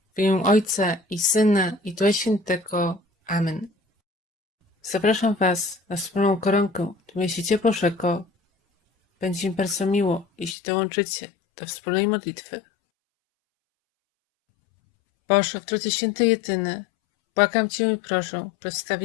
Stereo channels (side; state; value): right; drops out; at 10.6 s